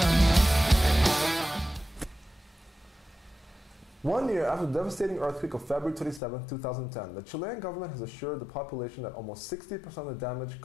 One year after the devastating earthquake of February 27, 2010, the Chilean government has assured the population that almost 60% of the damage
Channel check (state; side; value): drops out; right; at 6.2 s